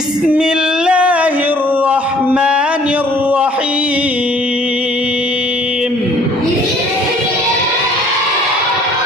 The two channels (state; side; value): normal; both; correlation 0.56